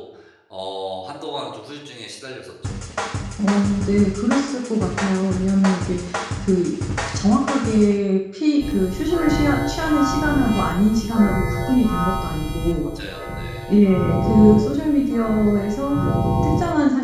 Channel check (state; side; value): identical; both; correlation 1.00